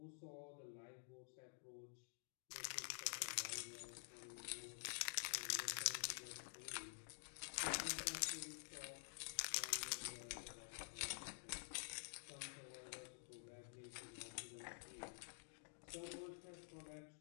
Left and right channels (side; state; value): right; silent; digital silence